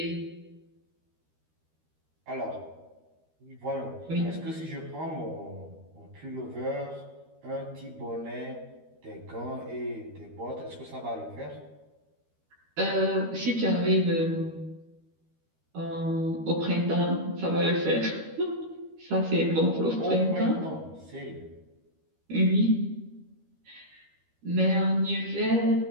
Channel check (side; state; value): left; late; 13 ms